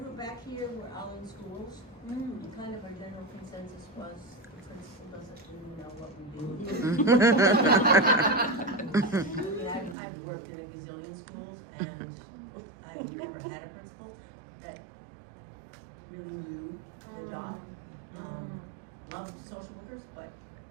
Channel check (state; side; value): drops out; left; at 10.0 s